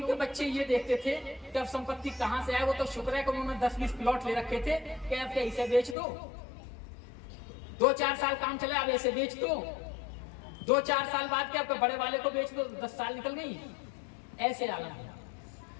बच्चे ये देखते थे कि अब संपत्ति कहां से आए। वो तो शुक्र है कि उन्होंने 10-20 प्लॉट ले रखे थे कि अब इसे बेच दो, 2-4 साल काम चले, अब ऐसे बेच दो, 2-4 साल बाद के आपके बड़े वाले को बेच दो, 10 साल निकल गई। ऐसे आलम।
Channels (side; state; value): right; drops out; at 6.0 s